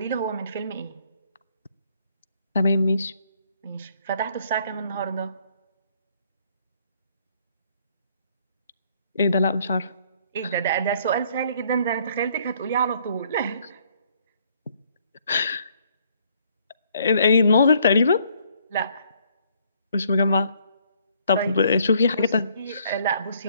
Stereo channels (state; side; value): inverted; both; correlation -0.65